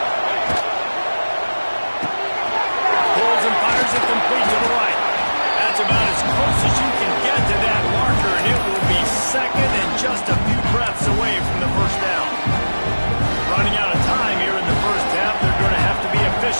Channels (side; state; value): both; inverted; correlation -1.00